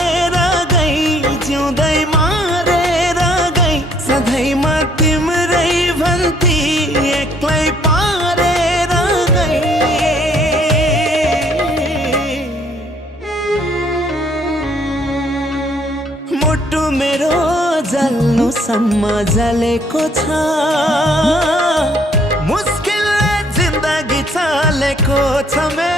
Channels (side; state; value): both; normal; correlation 0.63